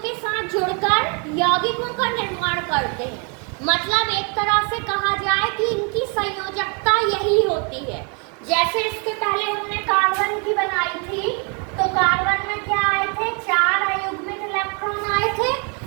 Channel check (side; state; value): left; quieter; 36.1 dB